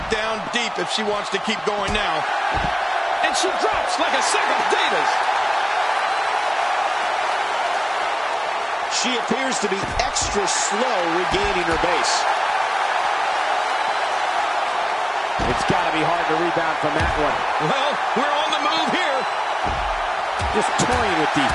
down deep if she wants to keep going now. And she drops like a sack of potatoes. She appears to be extra slow regaining her base. It's got to be hard to rebound from that one. Well, we're on the move here. Just toying with the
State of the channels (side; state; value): both; identical; correlation 1.00